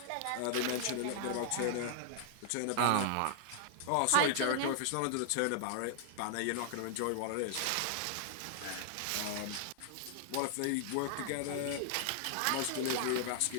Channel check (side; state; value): both; different; correlation -0.01